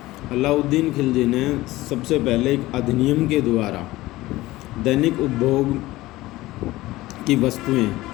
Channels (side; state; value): right; quieter; 18.0 dB